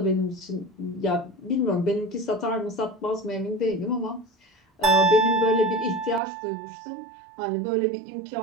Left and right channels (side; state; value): left; drops out; at 6.2 s